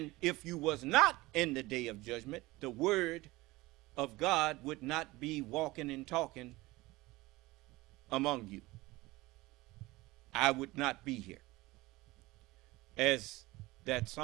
if you was not in the day of judgment, the word of God would not be walking and talking among you. I would not be here. As that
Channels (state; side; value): quieter; left; 20.3 dB